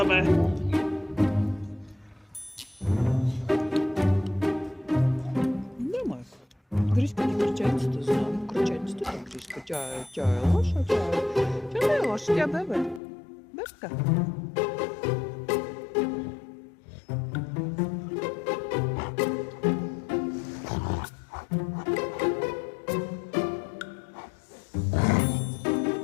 Няма. Гришка не кръченцата, знам. Кръченцата не Гришка. Тя е лоша, тя не е лоша, тя бебе. Бебка.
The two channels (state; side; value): drops out; right; at 13.0 s